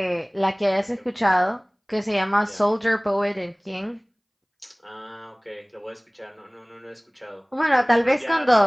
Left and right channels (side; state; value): both; identical; correlation 1.00